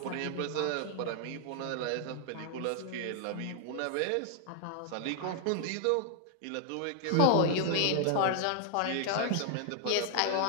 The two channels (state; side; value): different; both; correlation 0.00